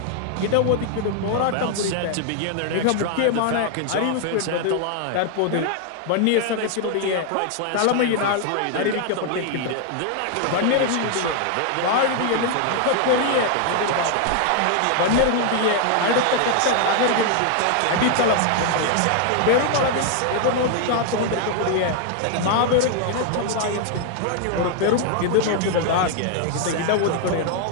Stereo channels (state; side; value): different; both; correlation 0.00